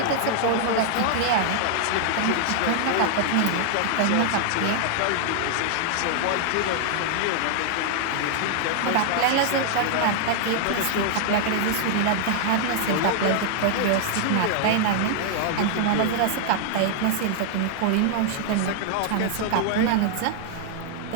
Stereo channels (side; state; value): both; different; correlation -0.01